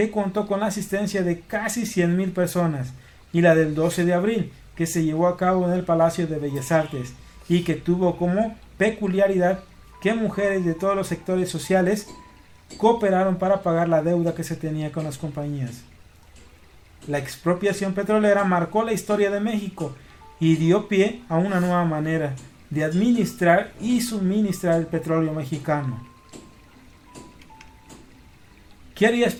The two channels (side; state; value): both; identical; correlation 1.00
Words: contó con la asistencia de casi 100,000 personas, y la del 12 de abril, que se llevó a cabo en el Palacio de Bellas Artes, y que tuvo como peculiaridad que mujeres de todos los sectores sociales cooperaron para pagar la deuda que se tenía con las compañías. La expropiación petrolera marcó la historia de México y dio pie a una nueva manera de administrar y suministrar el petróleo mexicano. ¿Qué harías